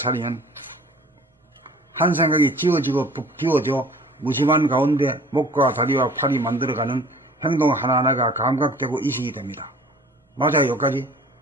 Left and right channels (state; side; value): normal; both; correlation 0.48